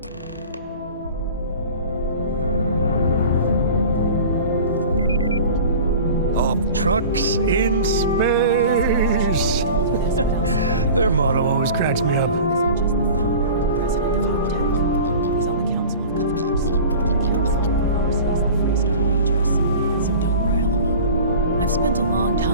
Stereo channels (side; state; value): both; inverted; correlation -0.39